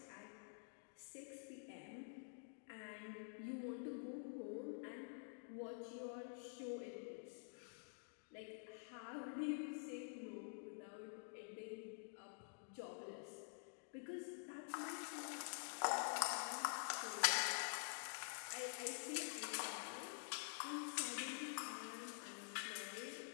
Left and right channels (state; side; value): silent; right; digital silence